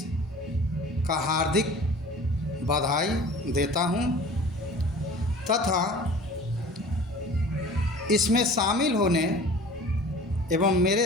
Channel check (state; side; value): normal; both; correlation 0.44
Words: का हार्दिक बधाई देता हूं तथा इसमें शामिल होने एवं